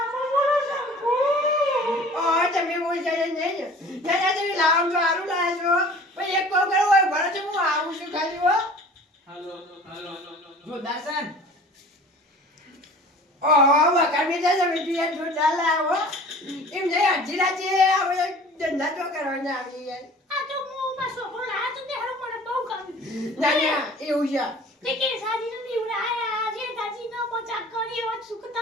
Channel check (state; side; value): normal; both; correlation 0.45